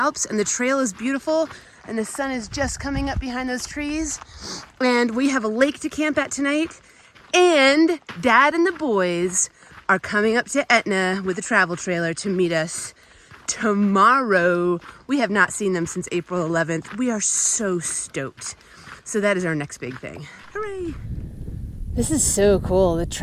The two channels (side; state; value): both; identical; correlation 1.00